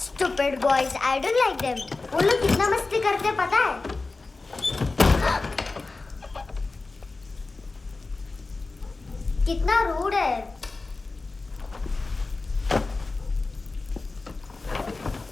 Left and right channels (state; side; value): quieter; right; 3.6 dB